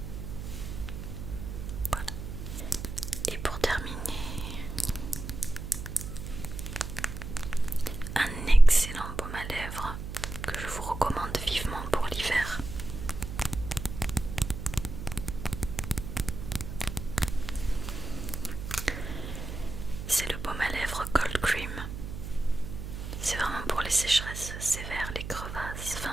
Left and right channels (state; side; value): noise; right; hum, 8 dB below the sound